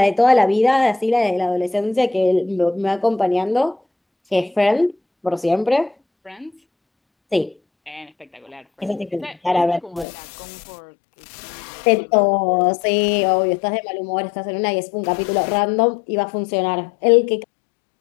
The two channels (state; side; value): drops out; right; at 10.1 s